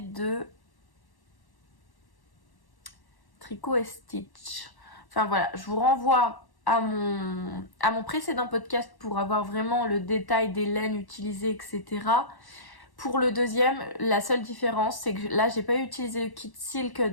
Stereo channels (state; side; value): late; right; 1.1 ms